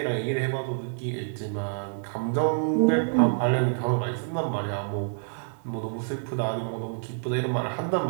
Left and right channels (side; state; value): left; silent; 60 dB below the other